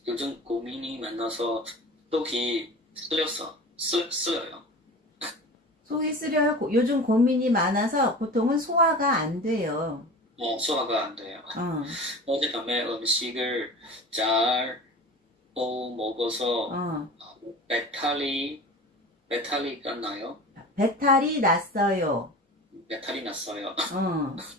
속이 쓰려요. 속이 쓰려요. 요즘 고민이 많아서 보통은 소화가 안 돼요. 소화가 안 돼요. 어젯밤에 음식을 잘 먹어서 어. 배탈이가 나요? 배탈이 났어요. 배탈이 났어요. 어.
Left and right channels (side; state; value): both; normal; correlation 0.36